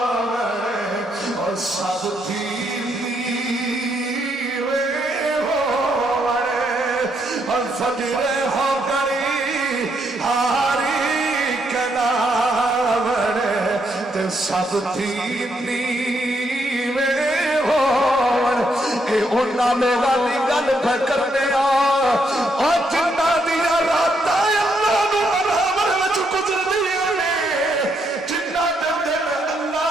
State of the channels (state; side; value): normal; both; correlation 0.76